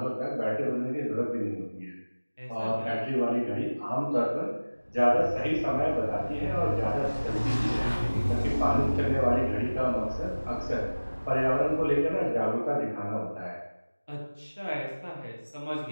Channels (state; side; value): inverted; both; correlation -1.00